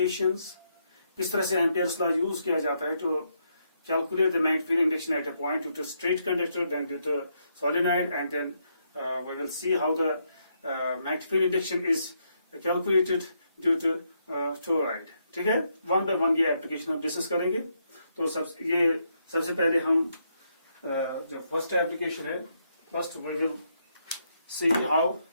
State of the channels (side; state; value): both; inverted; correlation -0.77